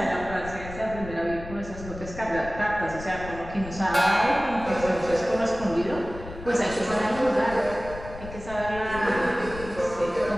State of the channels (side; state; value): left; noise; rumble, 13 dB below the sound